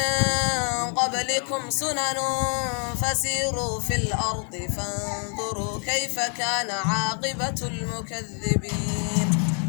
قبلكم سنن فسيروا في الأرض فانظروا كيف كان عاقبة المكذبين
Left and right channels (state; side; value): quieter; right; 39.7 dB